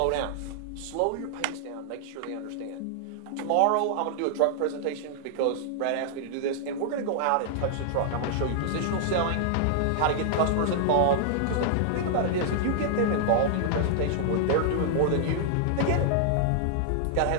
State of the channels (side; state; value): both; different; correlation -0.01